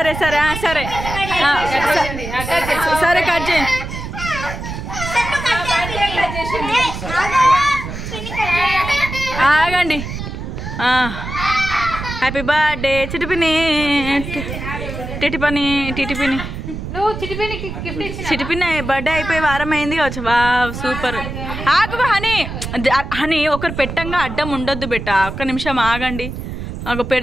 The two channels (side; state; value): right; noise; rumble, 7 dB below the sound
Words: సరే సరే సరే కట్ చేయి. ఆగండి. Happy birthday Chitipini. టిటిపని టిటిపిని చిటిపిని బర్త్డే అయిపోయి వారం అయింది కావచ్చు. వా సూపర్. ఆగు హనీ. హనీ ఒకరు పెట్టంగా అడ్డం ఉండొద్దు బెట్ట. ఒక్క నిమిషం ఆగండి. ఆగు